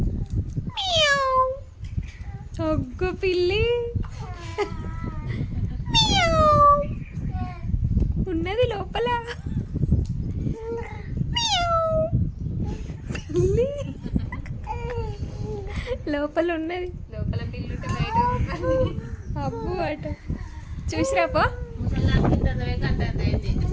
ఒగ్గు పిల్లి ఉన్నది లోపల. పిల్లి లోపల ఉన్నది. లోపల పిల్లి బయట అబ్బు అట చూసిరాపో.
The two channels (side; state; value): both; identical; correlation 1.00